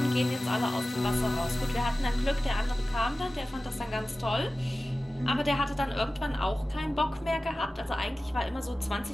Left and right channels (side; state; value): both; normal; correlation 0.96